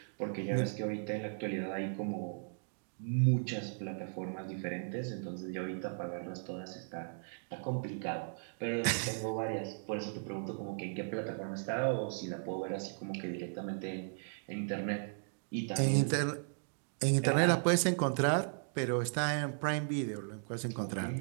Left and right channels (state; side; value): silent; left; digital silence